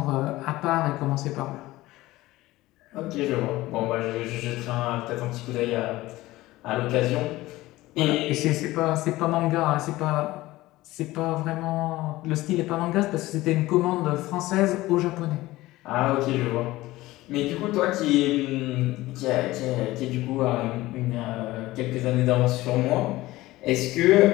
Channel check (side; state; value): right; quieter; 18.0 dB